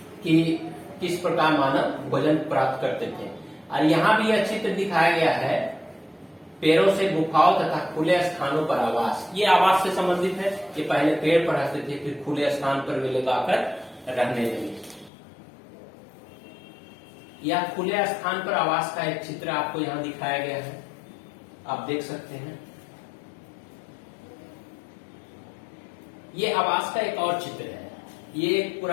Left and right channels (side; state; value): right; drops out; at 15.1 s